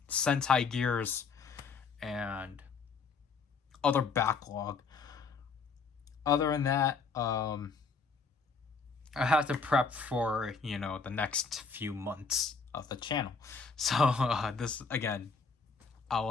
Sentai Gears, and other backlog. Other than that, I have to prep for, you know, the next few months of the channel. So this, again,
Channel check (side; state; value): right; quieter; 4.9 dB